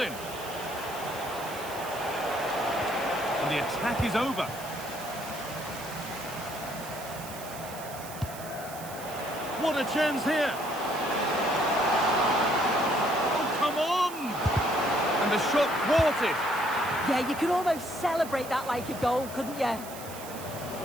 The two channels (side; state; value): right; noise; hiss, 14 dB below the sound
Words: And the attack is over. What a chance here. Oh, come on! And the shot thwarted. Yeah, you could almost celebrate that like a goal, couldn't you? I'm